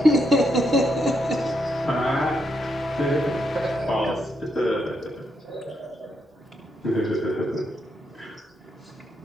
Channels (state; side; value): normal; both; correlation 0.80